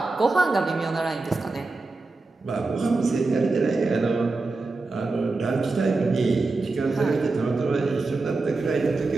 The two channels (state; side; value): quieter; left; 3.6 dB